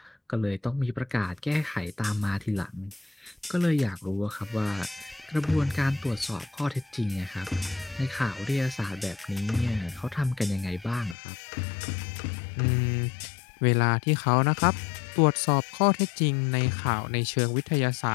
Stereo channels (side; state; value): right; drops out; at 11.2 s